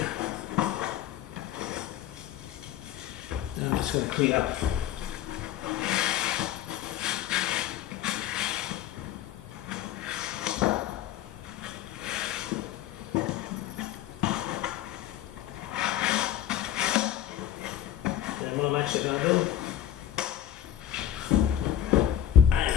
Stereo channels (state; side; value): quieter; right; 11.4 dB